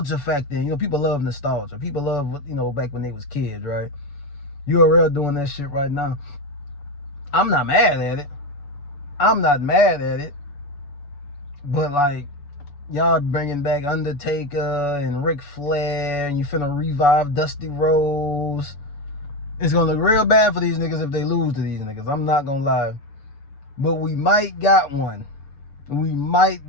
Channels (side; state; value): right; late; 7.0 ms